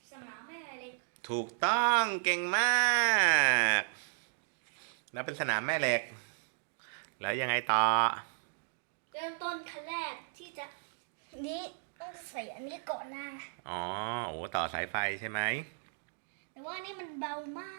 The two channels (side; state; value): left; silent; digital silence